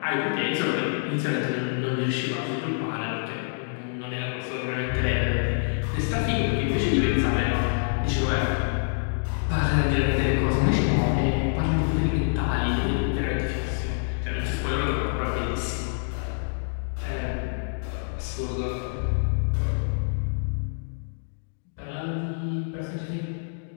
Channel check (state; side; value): silent; right; digital silence